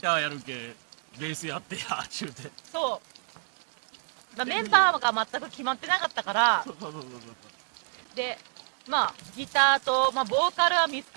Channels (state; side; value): silent; left; digital silence